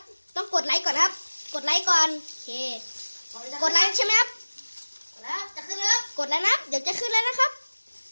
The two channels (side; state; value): both; inverted; correlation -1.00